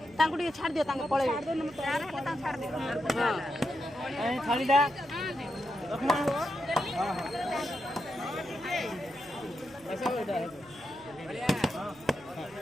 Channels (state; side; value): noise; right; hum, 24 dB below the sound